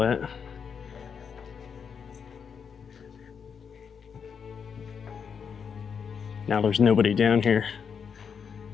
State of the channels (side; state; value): right; quieter; 6.7 dB